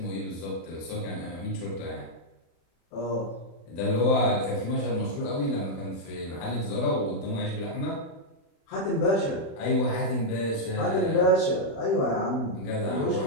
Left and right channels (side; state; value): right; late; 36 ms